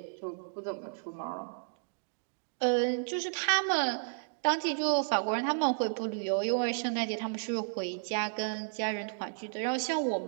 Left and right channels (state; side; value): silent; left; digital silence